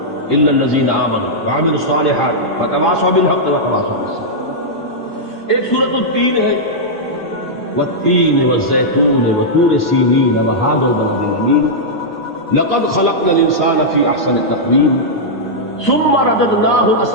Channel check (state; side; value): normal; both; correlation -0.08